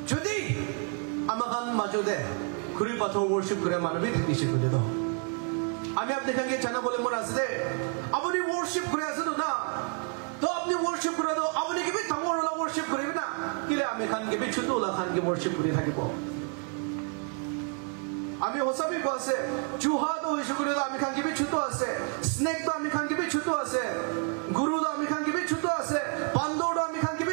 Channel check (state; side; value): quieter; left; 39.0 dB